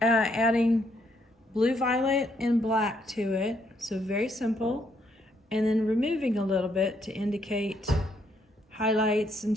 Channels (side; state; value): both; normal; correlation 0.72